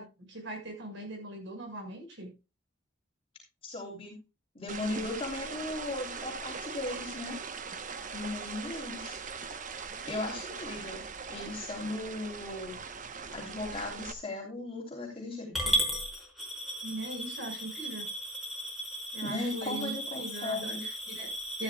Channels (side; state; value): both; normal; correlation 0.33